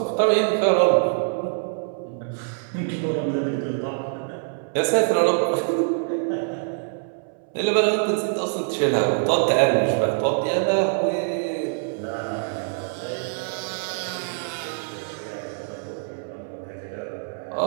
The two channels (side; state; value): left; silent; 61 dB below the other